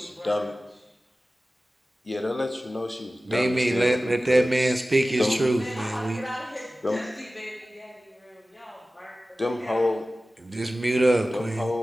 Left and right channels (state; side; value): normal; both; correlation 0.96